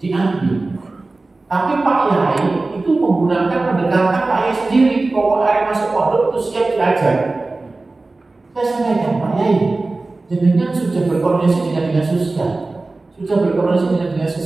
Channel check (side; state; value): left; quieter; 3.3 dB